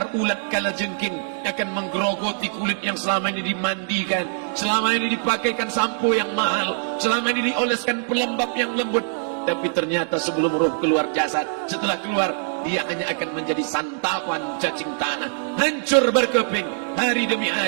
kalajengking akan menggerogoti kulit yang selama ini dimandikan, selama ini dipakaikan sampo yang mahal, selama ini dioleskan pelembab yang lembut. Tapi ternyata sebelum roh keluar jasad, setelah keluar dia hanya akan menjadi santapan cacing tanah, hancur berkeping hari demi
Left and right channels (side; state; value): left; silent; digital silence